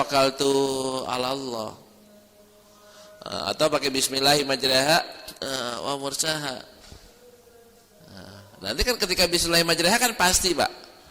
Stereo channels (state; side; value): identical; both; correlation 1.00